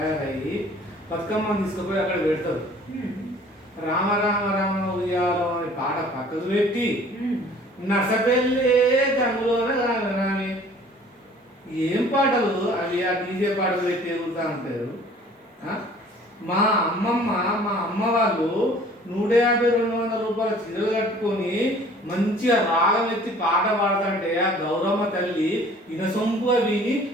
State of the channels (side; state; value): both; normal; correlation 0.51